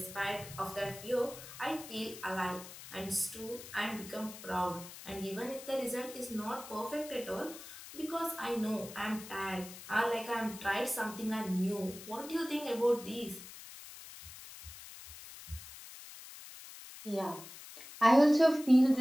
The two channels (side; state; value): left; noise; hiss, 14 dB below the sound